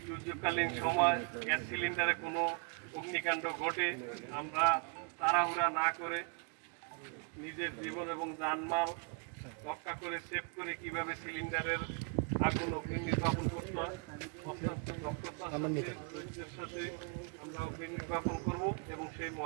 দুর্যোগকালীন সময় গ্যাস সিলিন্ডারে কোনো অগ্নিকাণ্ড ঘটে, আমরা তাড়াহুড়া না করে নিজের জীবন এবং জানমাল রক্ষা করে সেভ করে কিভাবে সিলিন্ডারের আগুন অগ্নি নির্বাপন করতে হয় অত্যন্ত দক্ষতার সাথে ধৈর্যের সাথে আমরা অগ্নি নির্বাপন করব এবং সেই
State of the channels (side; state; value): left; quieter; 35.4 dB